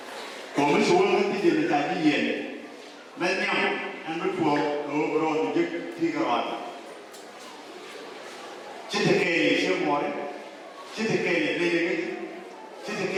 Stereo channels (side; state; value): both; identical; correlation 1.00